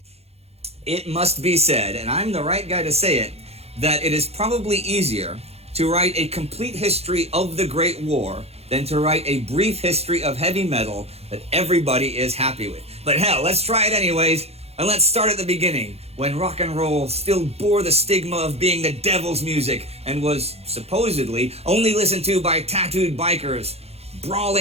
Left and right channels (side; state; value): left; late; 0.30 ms